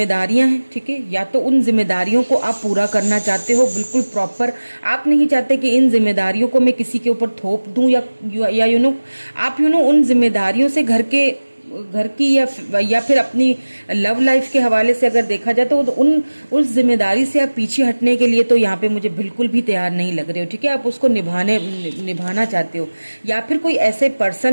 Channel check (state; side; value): inverted; both; correlation -1.00